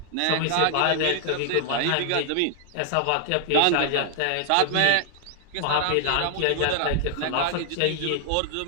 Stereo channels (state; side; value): different; both; correlation 0.00